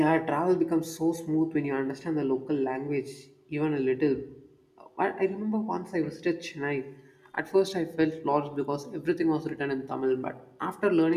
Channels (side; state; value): both; identical; correlation 1.00